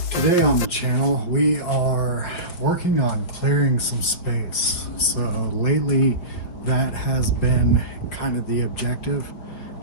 Today on the channel, we are working on clearing some space. So lately, that has been kind of the objective.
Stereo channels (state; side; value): late; right; 5.9 ms